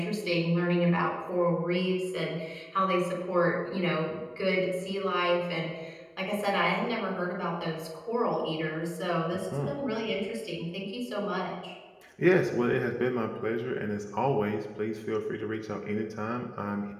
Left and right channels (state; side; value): identical; both; correlation 1.00